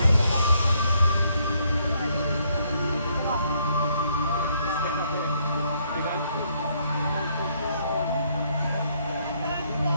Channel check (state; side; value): inverted; both; correlation -0.71